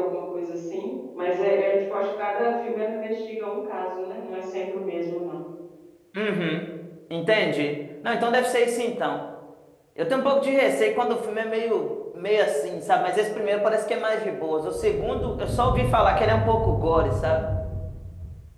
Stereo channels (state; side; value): identical; both; correlation 1.00